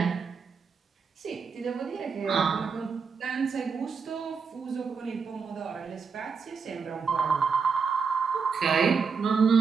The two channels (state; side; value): quieter; left; 5.5 dB